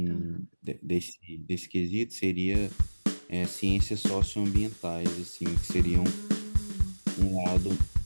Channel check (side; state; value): both; inverted; correlation -1.00